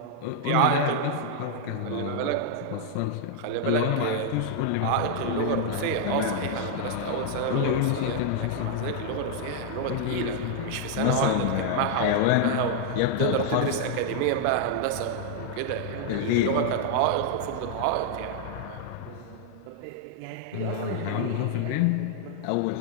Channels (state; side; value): different; both; correlation -0.01